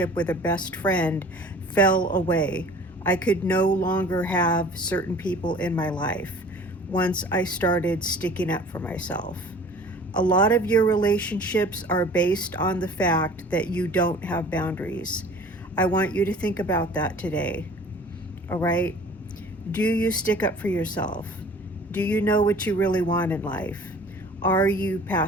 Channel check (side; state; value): both; normal; correlation 0.46